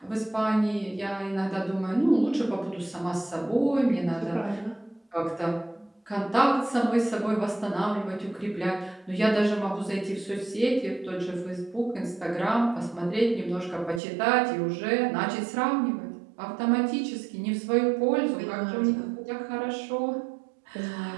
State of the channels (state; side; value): drops out; left; at 14.0 s